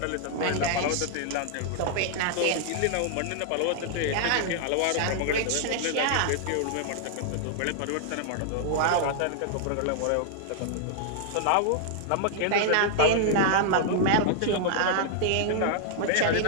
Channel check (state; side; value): different; both; correlation -0.01